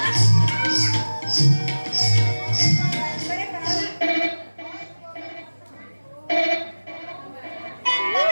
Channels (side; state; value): both; inverted; correlation -1.00